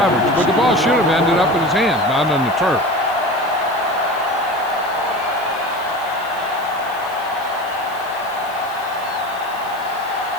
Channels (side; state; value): left; noise; hiss, 21 dB below the sound